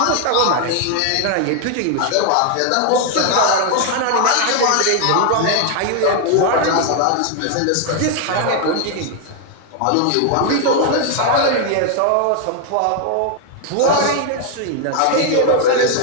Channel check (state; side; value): different; both; correlation 0.00